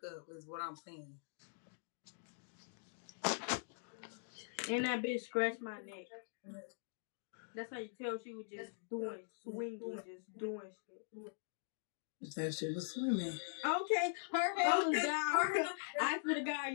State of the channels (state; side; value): silent; right; digital silence